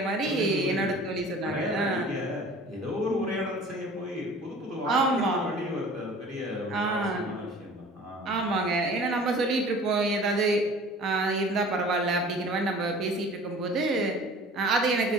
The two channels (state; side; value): normal; both; correlation 0.45